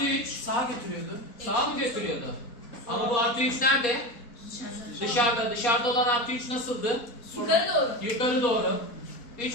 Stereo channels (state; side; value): late; right; 4.2 ms